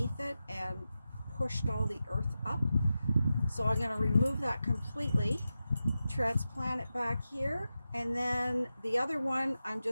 it and pushed all the earth up. So I'm going to remove that completely, transplant it back here, and then the other one I'm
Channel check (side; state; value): both; inverted; correlation -0.91